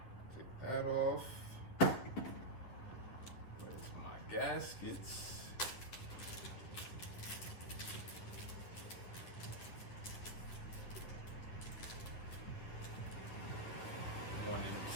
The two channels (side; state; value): right; late; 10 ms